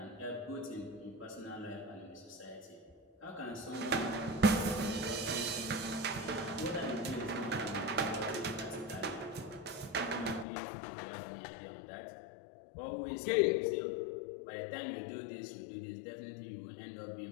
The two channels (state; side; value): drops out; right; at 10.5 s